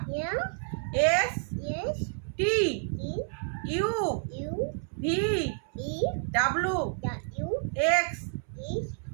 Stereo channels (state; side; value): silent; left; 58 dB below the other